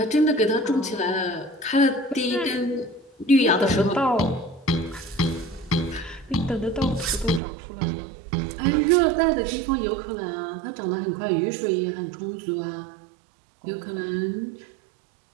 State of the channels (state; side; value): drops out; left; at 7.4 s